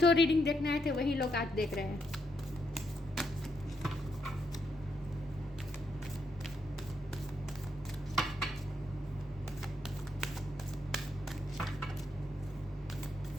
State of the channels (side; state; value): both; normal; correlation 0.79